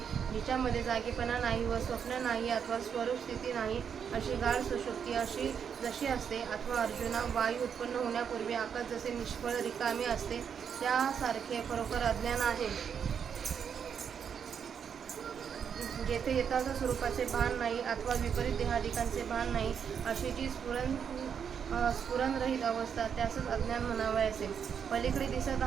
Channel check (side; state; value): left; quieter; 7.4 dB